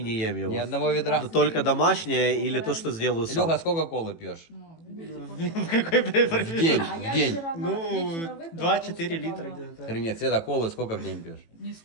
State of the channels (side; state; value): right; late; 18 ms